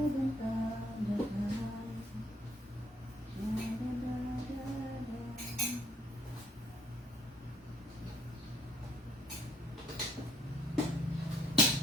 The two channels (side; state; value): both; normal; correlation 0.67